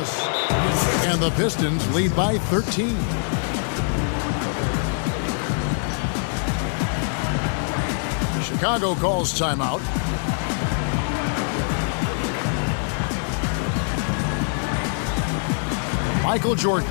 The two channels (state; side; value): silent; right; 57 dB below the other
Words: And the Pistons lead by 13. Chicago calls timeout. Michael Jordan,